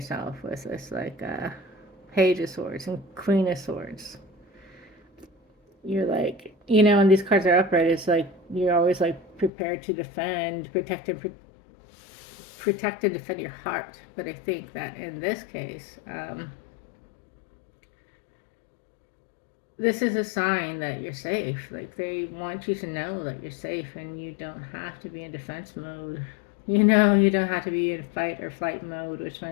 with this like Page of Swords and Queen of Swords. You're like, when these cards are upright, it's like you're always like prepared to defend, protect and defend your heart. But I think that in this case, this is a sign that you're safe. Like they want you to know that you're safe and you don't have to be in defense mode. You don't have to be in fight or flight mode, which my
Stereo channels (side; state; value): right; drops out; at 9.5 s